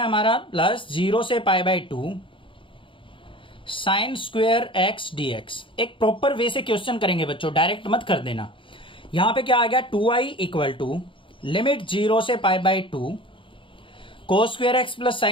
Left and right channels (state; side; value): late; right; 0.25 ms